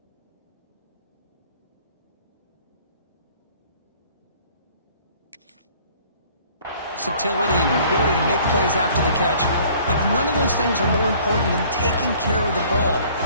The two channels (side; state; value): both; inverted; correlation -0.55